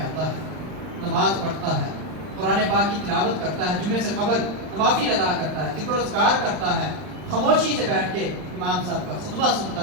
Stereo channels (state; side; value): late; left; 39 ms